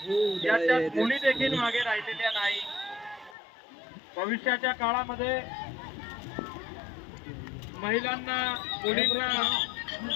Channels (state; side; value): drops out; right; at 3.4 s